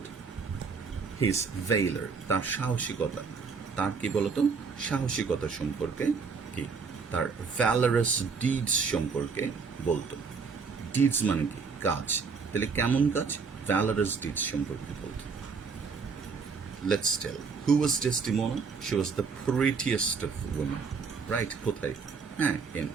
his valor, তার সাহসিকতা, তার কি বলতো সাহসিকতা সম্পর্কে, কি তার ভ্যালারাস ডিডস সম্পর্কে বলতো। ডিডস মানে কি? কাজ। তাহলে কেমন কাজ? ভ্যালারাস ডিডস সম্পর্কে বলতো। Let's tell. Who was Desdemona? She was the prettiest of women. Right? কোথায়? হ্যাঁ, in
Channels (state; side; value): quieter; left; 5.3 dB